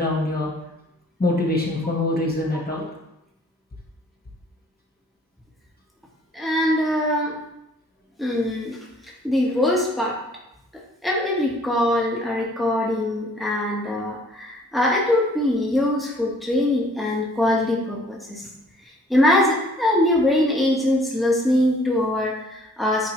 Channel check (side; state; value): both; normal; correlation 0.57